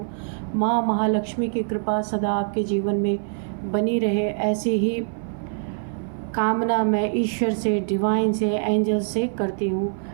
माँ महालक्ष्मी की कृपा सदा आपके जीवन में बनी रहे, ऐसी ही कामना मैं ईश्वर से, डिवाइन से, एंजल से करती हूँ।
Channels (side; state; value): left; silent; 56 dB below the other